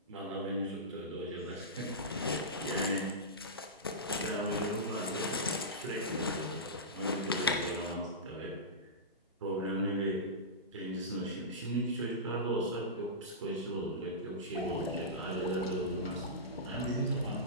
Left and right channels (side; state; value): both; normal; correlation -0.17